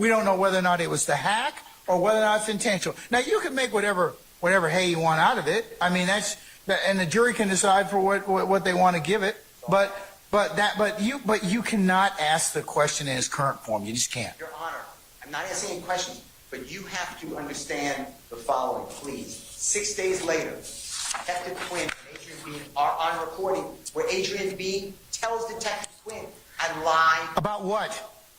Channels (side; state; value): both; identical; correlation 1.00